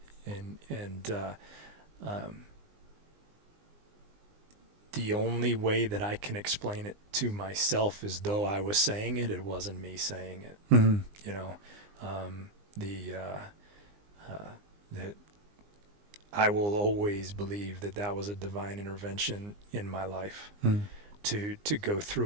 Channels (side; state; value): left; late; 20 ms